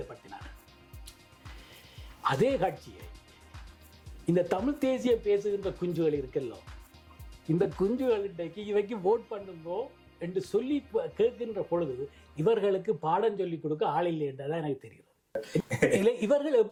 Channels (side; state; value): both; identical; correlation 1.00